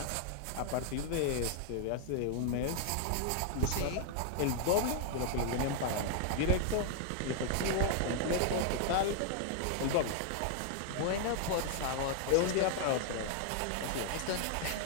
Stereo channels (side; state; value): both; different; correlation 0.00